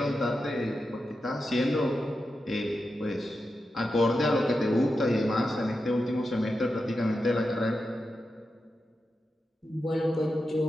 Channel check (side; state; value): both; normal; correlation 0.89